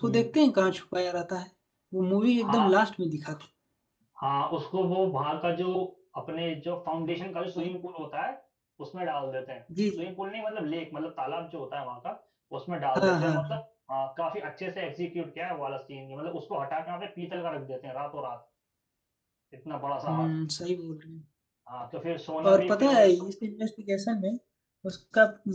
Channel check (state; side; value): identical; both; correlation 1.00